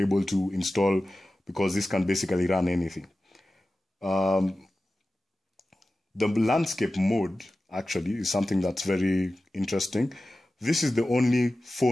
to install because this can basically run anything. The landscape mode actually is something that's very interesting. This is the only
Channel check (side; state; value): both; normal; correlation 0.95